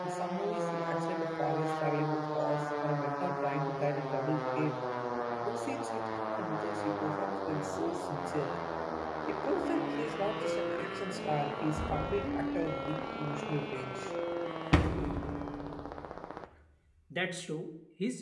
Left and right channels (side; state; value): both; identical; correlation 1.00